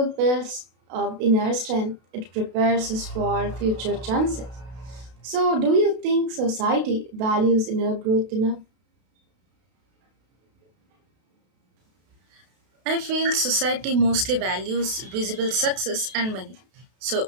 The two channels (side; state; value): left; late; 32 ms